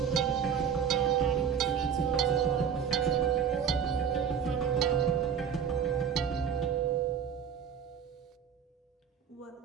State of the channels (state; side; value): quieter; left; 7.5 dB